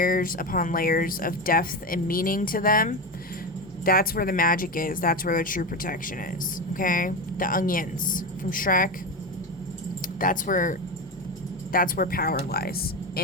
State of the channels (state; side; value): normal; both; correlation 0.18